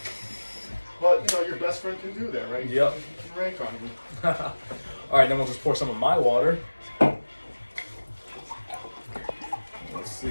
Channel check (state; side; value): inverted; both; correlation -1.00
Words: But, your best friend can do that, right? Yep. You can rank on me. All right, then we'll just pour some of my water. Let's